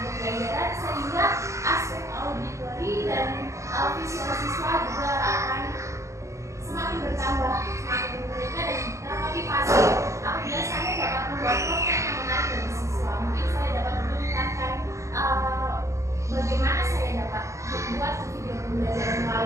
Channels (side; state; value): left; late; 0.14 ms